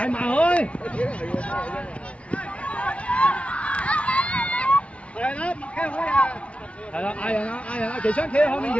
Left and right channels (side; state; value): right; late; 0.062 ms